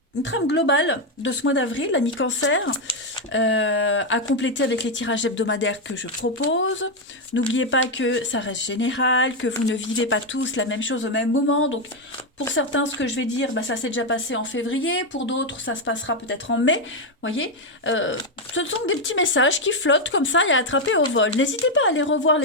globale de ce mois d'avril, l'ami Cancer, à compléter avec les tirages hebdomadaires que je propose. N'oubliez pas que ça reste général, que vous ne vivez pas tous la même chose au même moment. Donc, pour certains, ce que je vais dire, bah, ça s'est déjà passé en février. Pour d'autres, ça se passera peut-être en mai. Voyez, ce sont des petits messages qui flottent comme ça et à attraper au vol. N'hésitez pas à aller revoir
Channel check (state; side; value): normal; both; correlation 0.05